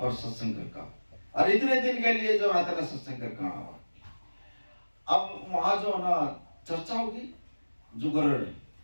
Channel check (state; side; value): inverted; both; correlation -1.00